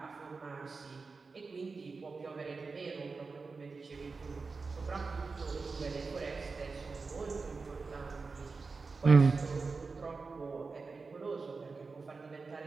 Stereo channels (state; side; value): quieter; left; 4.3 dB